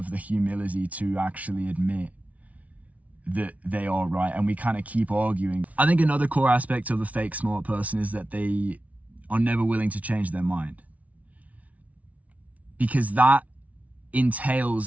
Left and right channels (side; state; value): left; late; 0.069 ms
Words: the humility to actually admit that they are right, and we kind of keep arguing. I think another core aspect of a fake smart person is that they are never willing to change their mind, because that